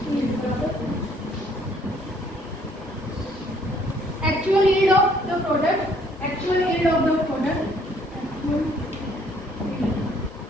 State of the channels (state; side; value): normal; both; correlation 0.63